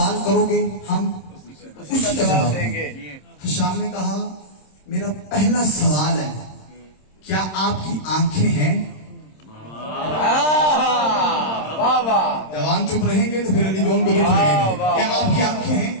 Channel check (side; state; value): right; late; 26 ms